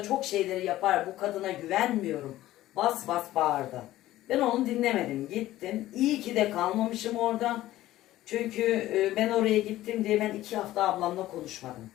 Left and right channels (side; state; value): right; quieter; 15.1 dB